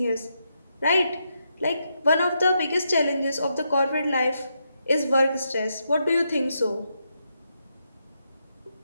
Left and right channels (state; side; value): inverted; both; correlation -0.82